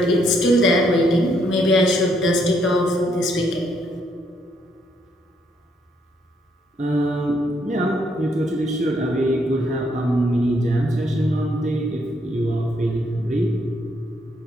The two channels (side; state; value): both; normal; correlation 0.72